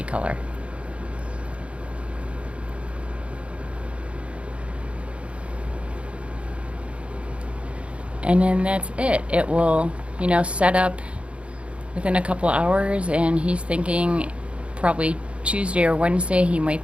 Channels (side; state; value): left; late; 0.061 ms